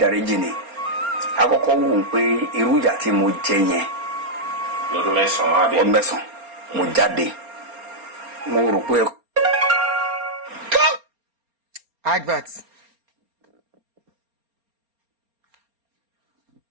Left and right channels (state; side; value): late; left; 4.3 ms